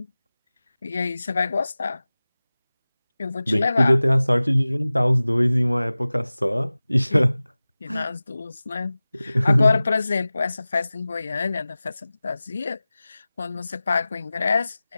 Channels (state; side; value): inverted; both; correlation -0.97